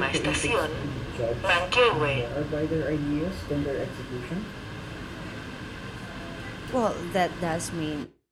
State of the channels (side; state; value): both; identical; correlation 1.00